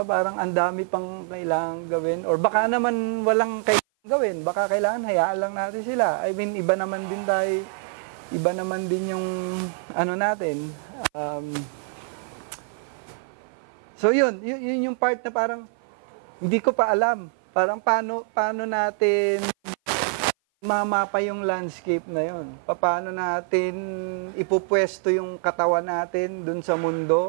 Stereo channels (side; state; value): left; silent; 55 dB below the other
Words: parang ang dami pang kailangan gawin, or baka naman walang kailangan gawin, baka kailangan hayaan lang natin sila. I mean, iba naman din yung natin. So yun yung part na parang hindi ko pa alam, parang paano natin mamapa yung landscape na yun. Paano natin ipupwesto yung katawan natin dun sa